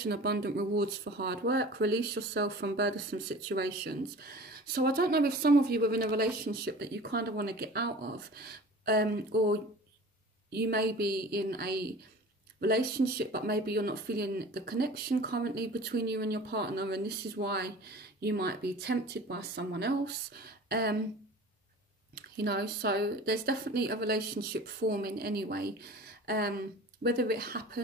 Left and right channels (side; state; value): both; normal; correlation 0.41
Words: abundant rewards for hard work. Release yourself from burdensome situations. So I don't know if some of you are in a relationship that you kind of want to get out of. Or you may be in a relationship, but maybe you're not feeling the connection currently between you and your partner, and this is why you might be tempted by someone else. You know, so there's definitely a relationship forming anyway. Whether it